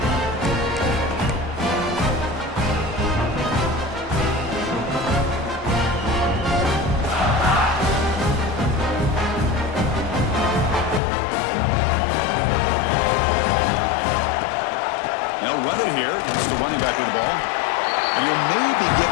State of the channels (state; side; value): drops out; right; at 11.0 s